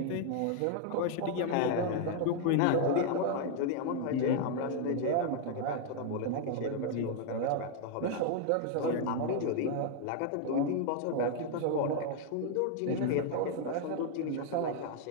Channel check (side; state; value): both; different; correlation 0.00